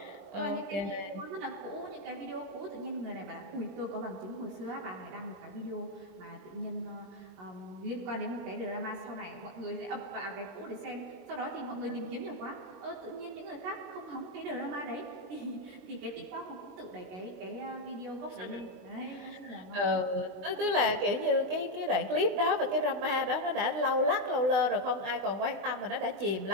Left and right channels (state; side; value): late; left; 22 ms